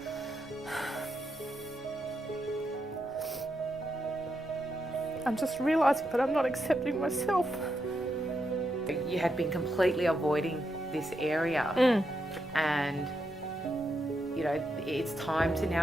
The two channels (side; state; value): both; normal; correlation 0.83